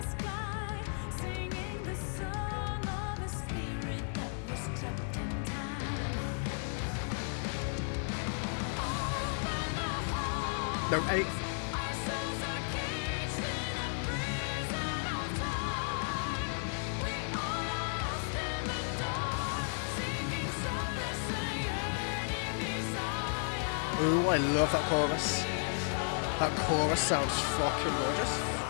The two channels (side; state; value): right; silent; 55 dB below the other